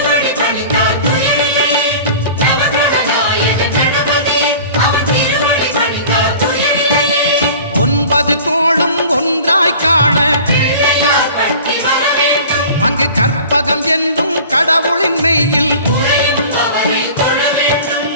ஒன்பது கோளும் ஒன்றாய் காண அங்கு கற்பகம் என்னும் கடவுளின் மெய்யில்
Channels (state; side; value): inverted; both; correlation -0.42